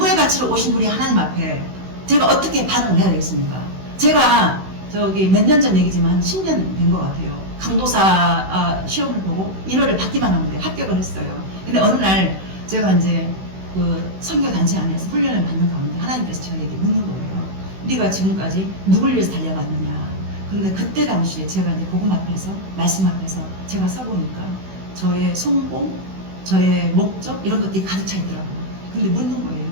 가치로 오신 우리 하나님 앞에 제가 어떻게 반응을 해야 되겠습니까? 제가 저기 몇 년 전 얘기지만 한 10년 된 것 같아요. 강도사 시험을 보고 1월을 받기만 하면 돼. 합격을 했어요. 근데 어느 날 제가 이제 그 선교단체 안에서 훈련을 받는 가운데 하나님께서 저에게 묻는 거예요. 네가 지금까지 누굴 위해서 달려왔느냐. 그런데 그때 당시에 제가 이제 복음 앞에서 말씀 앞에서 제가 서보니까 저의 성공, 저의 목적 이런 것들이 가득 차 있더라고요. 근데 묻는 거예요.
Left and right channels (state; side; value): late; left; 16 ms